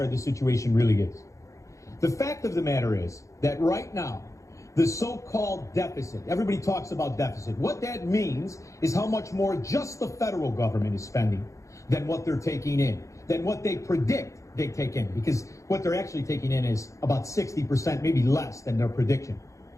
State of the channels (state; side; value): late; right; 0.15 ms